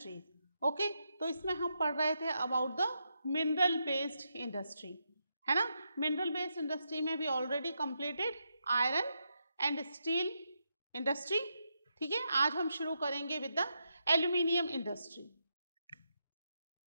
Okay, तो इसमें हम पढ़ रहे थे about the mineral based industry, है ना. mineral based industry में we already completed iron and steel industry. ठीक है, आज हम शुरू करेंगे with the aluminium industry.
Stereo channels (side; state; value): both; inverted; correlation -0.83